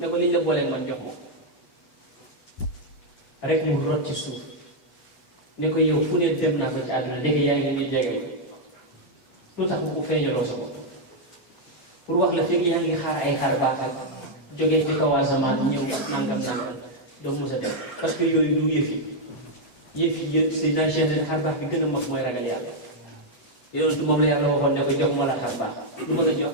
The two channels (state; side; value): late; right; 8.1 ms